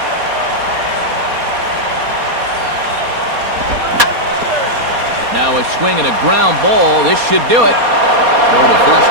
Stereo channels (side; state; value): left; late; 4.2 ms